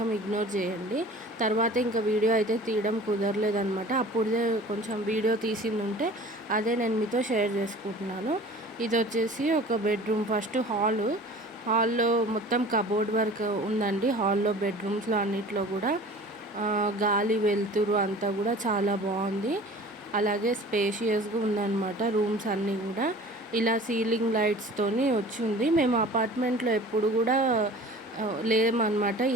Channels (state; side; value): normal; both; correlation 0.44